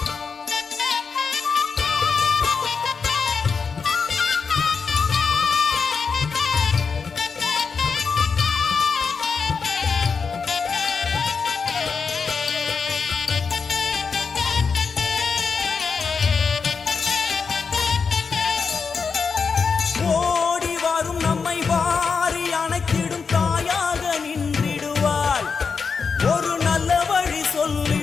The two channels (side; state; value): right; quieter; 5.4 dB